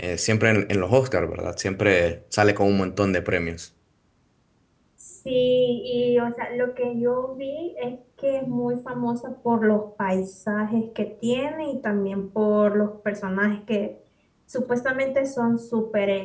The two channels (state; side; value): identical; both; correlation 1.00